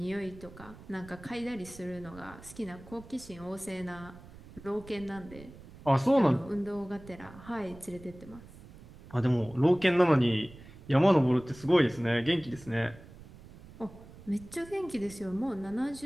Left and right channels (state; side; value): noise; right; rumble, 19 dB below the sound